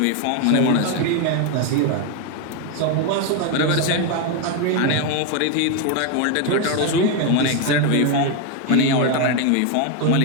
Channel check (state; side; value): different; both; correlation 0.02